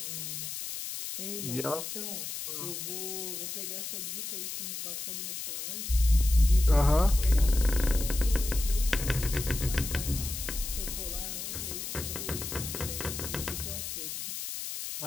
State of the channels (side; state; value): left; noise; hiss, 6 dB below the sound